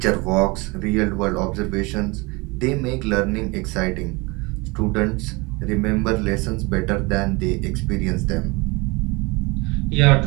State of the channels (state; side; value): quieter; left; 26.1 dB